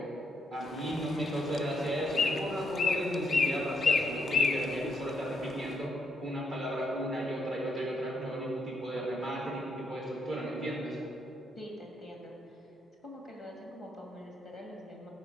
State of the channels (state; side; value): normal; both; correlation 0.77